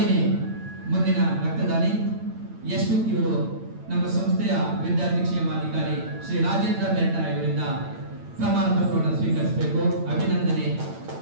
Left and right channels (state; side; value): late; left; 8.9 ms